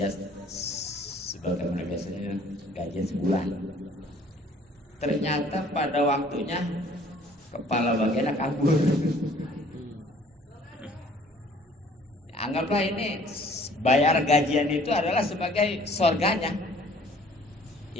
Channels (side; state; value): both; normal; correlation 0.55